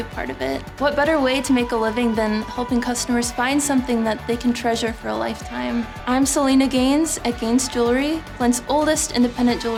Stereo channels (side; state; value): both; identical; correlation 1.00